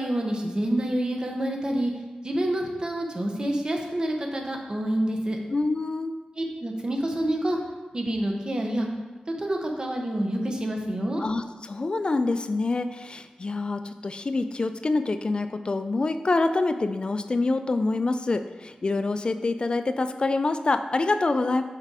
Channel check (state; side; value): normal; both; correlation 0.94